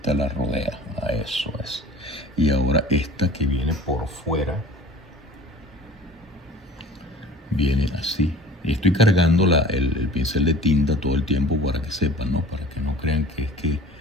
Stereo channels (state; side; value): normal; both; correlation 0.44